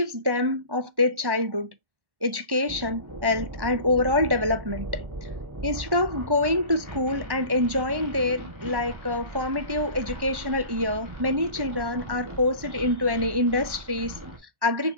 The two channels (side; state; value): left; late; 1.1 ms